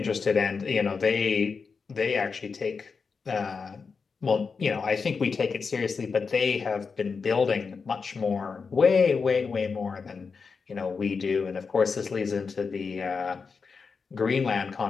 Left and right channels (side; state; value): right; quieter; 5.1 dB